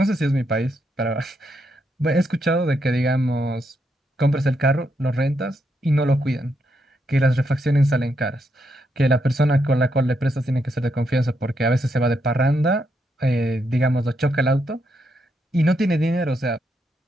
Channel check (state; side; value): normal; both; correlation 0.80